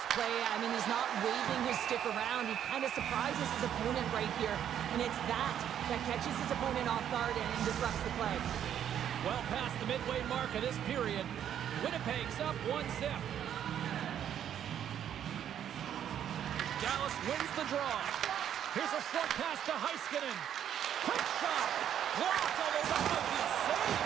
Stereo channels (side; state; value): left; quieter; 9.8 dB